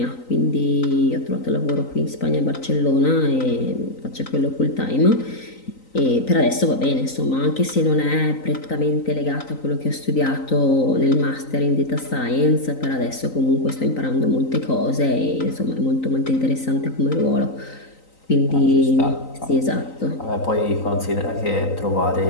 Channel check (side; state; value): right; late; 3.9 ms